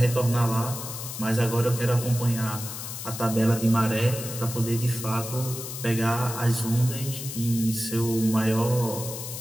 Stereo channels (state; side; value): noise; left; hiss, 8 dB below the sound